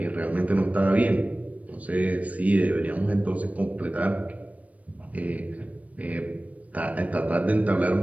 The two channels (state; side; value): late; left; 0.068 ms